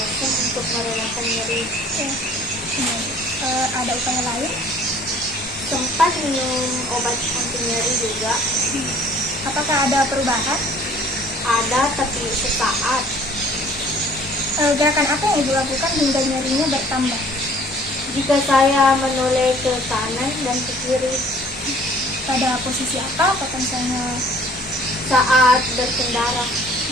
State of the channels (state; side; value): normal; both; correlation 0.53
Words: untuk merelakan nyeri. Ada upaya lain? Sempat minum obat anti nyeri juga. Apakah ada perubahan? Ada, tapi sesaat. Gerakan apa yang Ibu lakukan hingga nyerinya bertambah? Jika saya menoleh ke kanan dan ke kiri Pada posisi apa? Apakah misalnya saat berkendara,